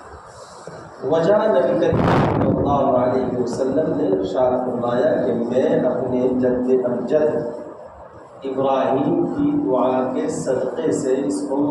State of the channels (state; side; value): identical; both; correlation 1.00